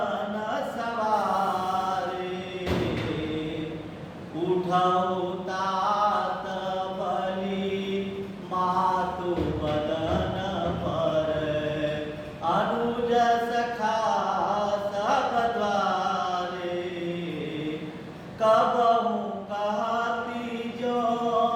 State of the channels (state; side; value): identical; both; correlation 1.00